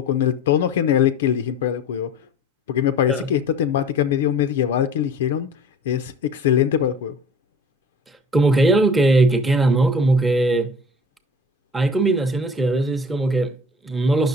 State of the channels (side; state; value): both; normal; correlation 0.43